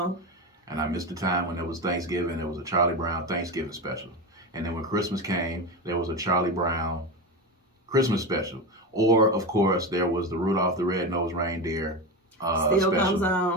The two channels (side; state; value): both; normal; correlation 0.20